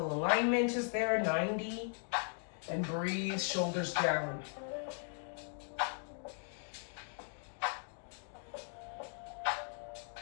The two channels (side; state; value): right; silent; 52 dB below the other